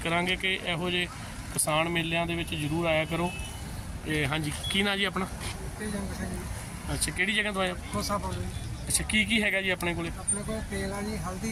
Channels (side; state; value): both; identical; correlation 1.00